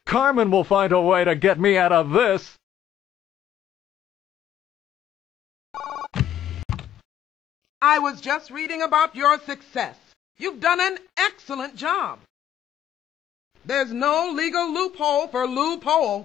Carmen will find a way to get me out of this. I was just reading about your success. You've done an excellent job. There's no legal loophole for Lou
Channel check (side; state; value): right; quieter; 10.4 dB